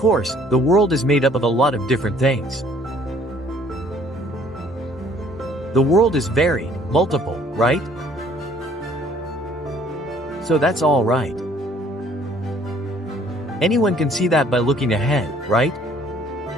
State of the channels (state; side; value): normal; both; correlation 0.59